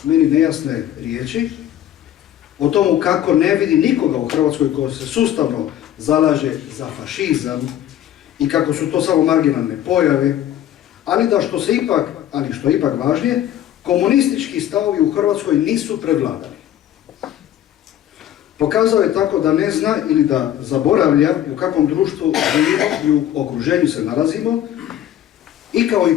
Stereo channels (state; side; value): quieter; right; 11.6 dB